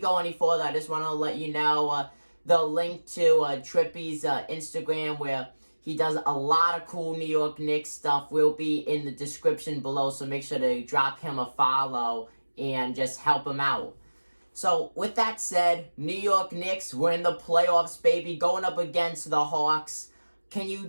any further, I just want to let you know the link to Trippy's Instagram, where he does a lot of cool New York Knicks stuff, will be in the description below, so make sure to drop him a follow and just help him out. So, with that said, New York Knicks, we're in the playoffs, baby, going up against the Hawks. Can you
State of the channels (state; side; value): inverted; both; correlation -1.00